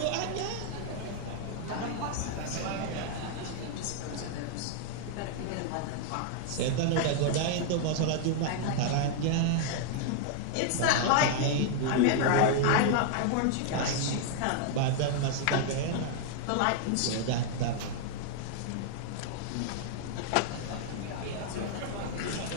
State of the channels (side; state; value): both; different; correlation 0.00